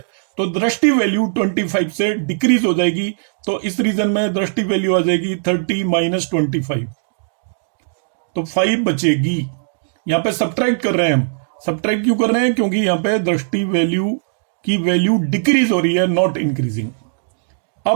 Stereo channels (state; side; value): silent; left; digital silence